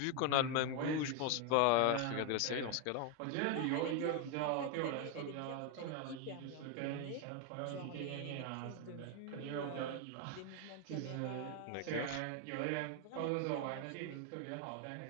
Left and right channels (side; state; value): both; different; correlation 0.01